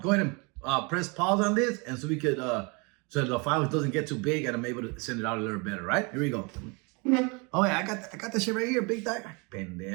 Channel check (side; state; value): left; quieter; 30.3 dB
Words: ahead and press pause on this, and so we could, so the file doesn't get too big, and I'm able to send it out a little better, right? Here we go. Oh yeah, I got that shit right here, big dog.